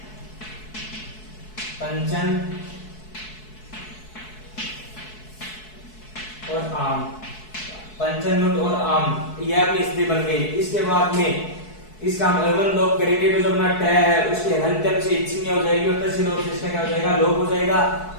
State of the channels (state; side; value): late; right; 4.6 ms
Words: पंचन और आम, पंचन नुट और आम, यह अपनी स्थिति बन गई। इसके बाद में इसका हम अवयव लोप करेंगे तो जो अपना ट है उसके हलंत्यम से इच संज्ञा हो जाएगी और तस्य लोप से इसका क्या हो जाएगा, लोप हो जाएगा।